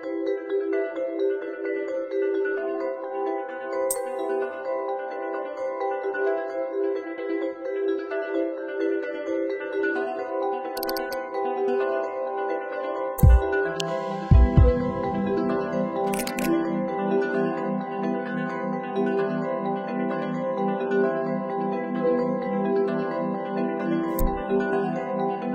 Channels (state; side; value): identical; both; correlation 1.00